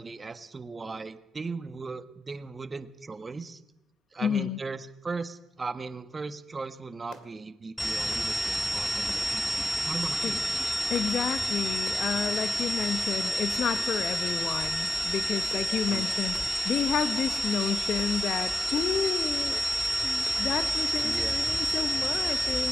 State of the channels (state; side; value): normal; both; correlation 0.87